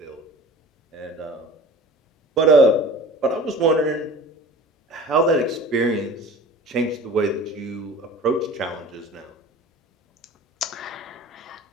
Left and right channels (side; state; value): both; normal; correlation 0.40